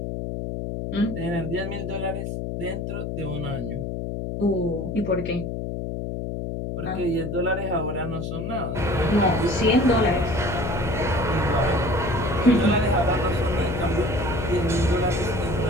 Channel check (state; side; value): noise; left; hum, 4 dB below the sound